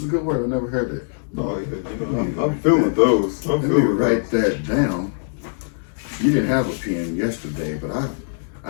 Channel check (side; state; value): right; silent; digital silence